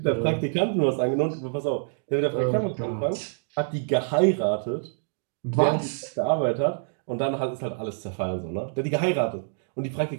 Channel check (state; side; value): silent; left; digital silence